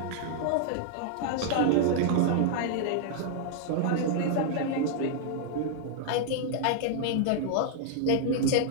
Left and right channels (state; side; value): different; both; correlation -0.01